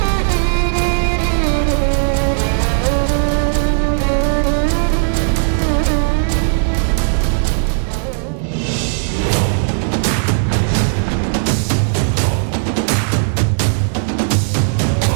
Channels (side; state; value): left; silent; digital silence